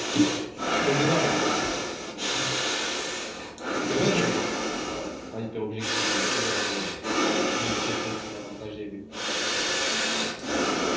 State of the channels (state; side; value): identical; both; correlation 1.00